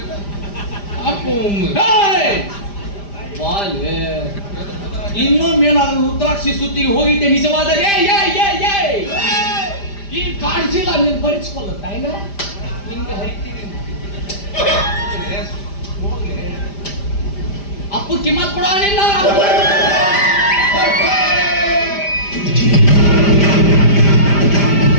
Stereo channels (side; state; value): right; late; 5.0 ms